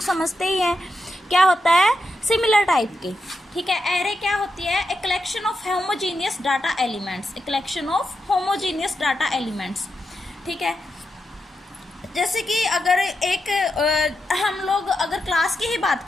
समझते ही हैं, क्या होता है? सिमिलर टाइप के। ठीक है, एरे क्या होती है? एक collection of homogeneous data elements, एक collection of homogeneous data elements. ठीक है, जैसे कि अगर हम लोग अगर क्लास की ही बात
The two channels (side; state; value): both; normal; correlation 0.86